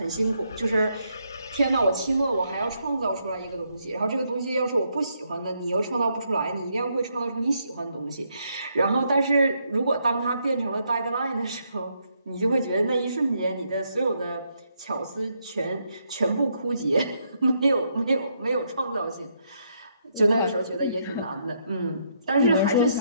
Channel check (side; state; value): both; inverted; correlation -0.76